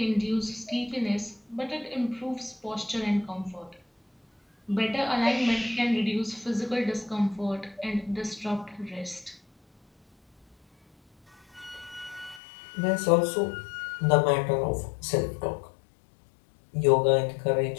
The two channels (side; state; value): right; drops out; at 12.4 s